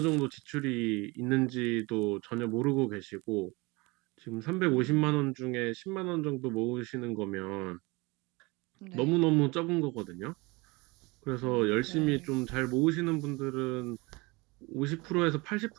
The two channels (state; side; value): quieter; left; 25.1 dB